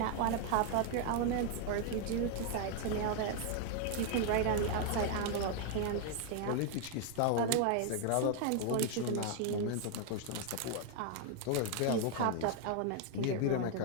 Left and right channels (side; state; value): both; different; correlation 0.00